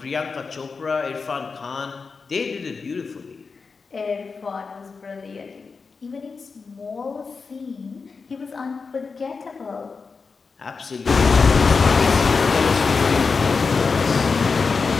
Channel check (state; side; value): quieter; right; 4.8 dB